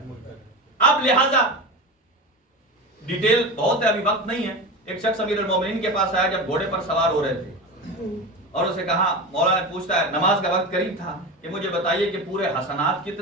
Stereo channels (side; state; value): both; normal; correlation 0.25